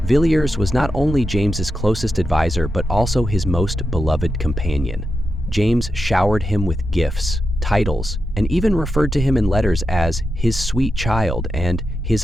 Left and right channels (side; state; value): both; normal; correlation 0.88